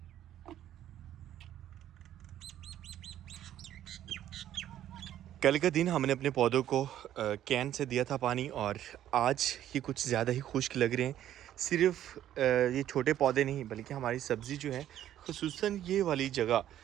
कल का दिन हमने अपने पौधों को कैन से दिया था पानी, और आज ये कुछ ज़्यादा ही खुश्क लग रहे हैं। सिर्फ ये छोटे पौधे नहीं, बल्कि हमारी सब्ज़ी जो है, खुसूसन ये वाली जगह,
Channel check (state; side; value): quieter; left; 11.8 dB